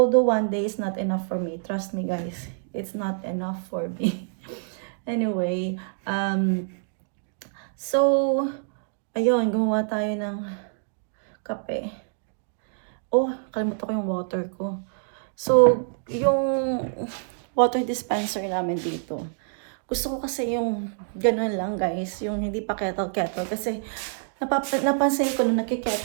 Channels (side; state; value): left; silent; digital silence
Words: one day is not enough for me. Trust me guys, it's not enough for me. Anyway, so, ayun, gumawa tayo ng kape. Oh, kalimutan ko yung water ko. So, yung water dispenser namin dito. Gusto ko kasi yung ganun lang guys, yung hindi pa kettle. Kasi napansin ko nung